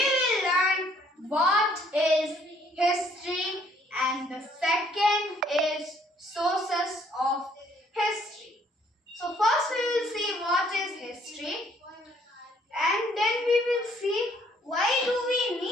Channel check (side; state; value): both; normal; correlation 0.63